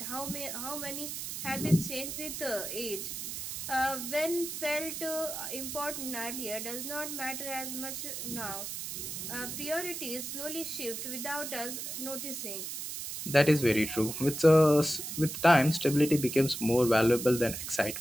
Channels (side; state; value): right; noise; hiss, 6 dB below the sound